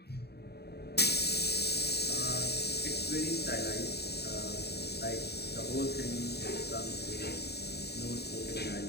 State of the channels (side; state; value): right; late; 0.48 ms